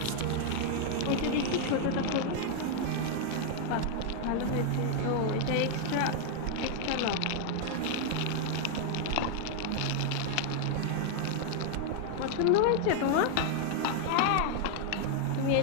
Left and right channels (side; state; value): both; different; correlation 0.00